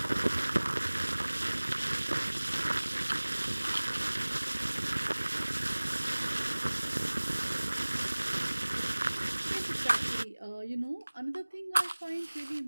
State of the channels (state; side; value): inverted; both; correlation -1.00